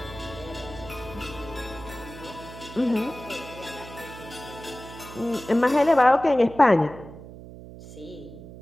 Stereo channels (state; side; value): noise; right; hum, 15 dB below the sound